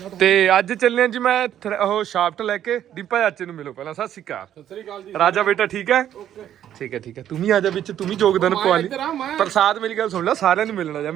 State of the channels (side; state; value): left; quieter; 10.7 dB